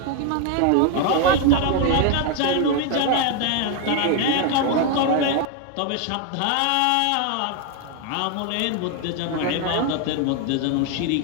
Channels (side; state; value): both; different; correlation 0.01